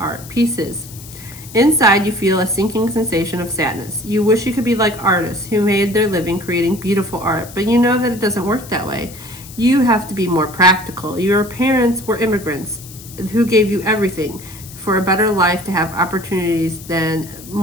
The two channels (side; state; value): left; noise; hiss, 17 dB below the sound